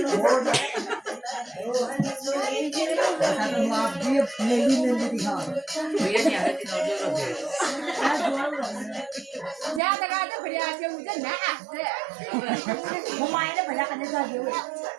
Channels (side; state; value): left; drops out; at 9.8 s